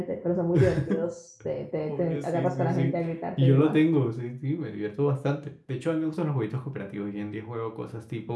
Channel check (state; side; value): identical; both; correlation 1.00